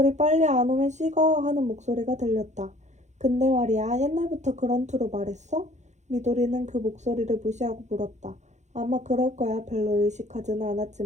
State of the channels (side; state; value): left; late; 0.34 ms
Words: 빨리 안 오면 식어 하는 목소리가 들렸다. 근데 말이야 옛날부터 그런 투로 말했어? 미도리는 그 목소리를 무시하고 물었다. 아마 그럴 거야. 별로 의식하지는